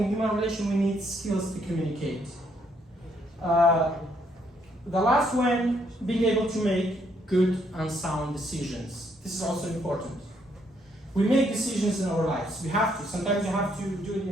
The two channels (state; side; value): normal; both; correlation 0.71